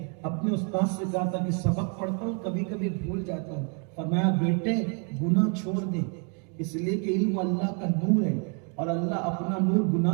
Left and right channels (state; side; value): quieter; left; 38.8 dB